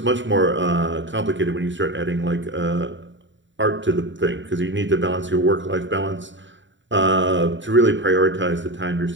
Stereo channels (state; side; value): late; left; 0.54 ms